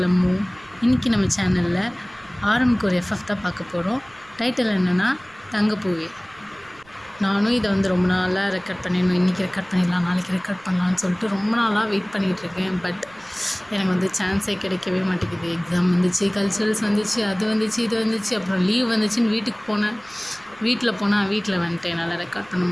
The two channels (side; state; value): right; noise; rumble, 28 dB below the sound